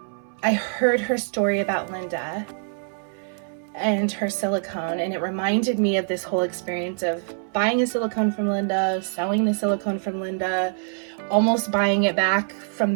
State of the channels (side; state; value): left; silent; 61 dB below the other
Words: I heard her story about Linda and her silicone, and it reminded me of this whole experience of buying a silicone from Linda, selling the silicone from Linda, almost buying it back